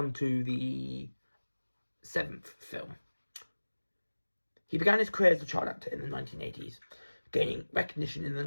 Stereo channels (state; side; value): inverted; both; correlation -1.00